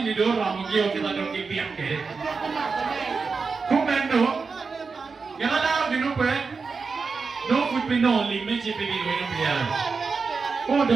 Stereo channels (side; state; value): left; quieter; 4.8 dB